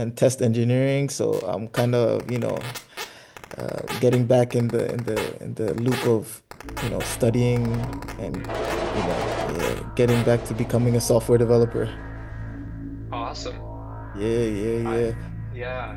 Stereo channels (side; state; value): both; identical; correlation 1.00